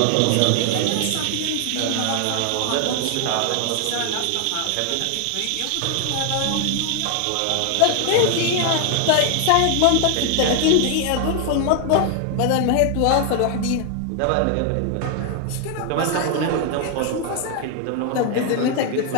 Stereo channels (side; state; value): both; different; correlation 0.00